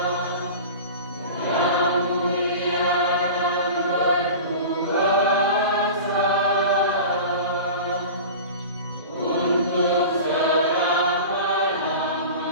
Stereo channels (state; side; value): inverted; both; correlation -0.34